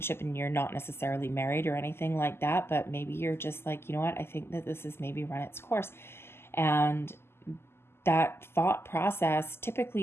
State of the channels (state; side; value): late; right; 0.12 ms